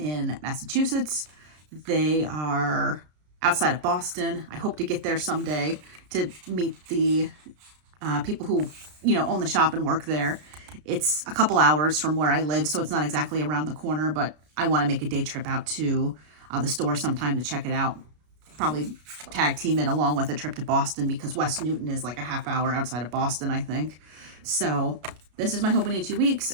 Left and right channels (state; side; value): late; left; 33 ms